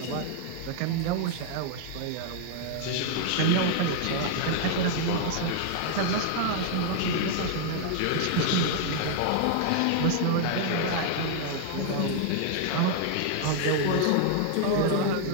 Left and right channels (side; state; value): both; different; correlation 0.00